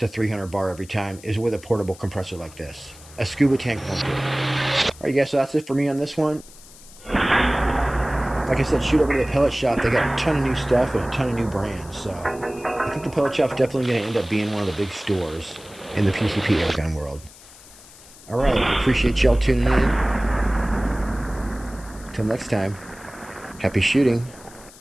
300 bar every time is with a portable compressor like this. A scuba tank won't do it. Alright guys, so that's it for me on this one. Like I said, shoot over to the Pellet Shop. They got a ton of new stuff and a ton of new brands. So I think the Pellet Shop's definitely going to end up being one of the big stores in the PCP airgun world. Alright, I appreciate y'all tuning in. Until next time, happy shooting.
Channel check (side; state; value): left; noise; hiss, 21 dB below the sound